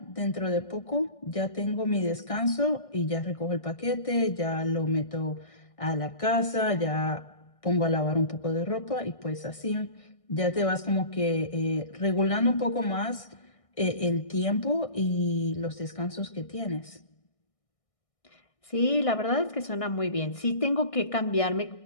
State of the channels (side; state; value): right; late; 1.6 ms